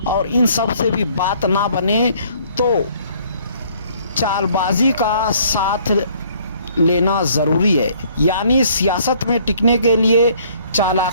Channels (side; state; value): both; inverted; correlation -0.60